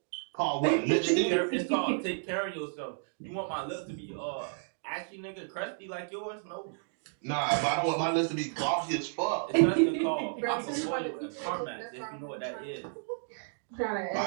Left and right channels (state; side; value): silent; left; digital silence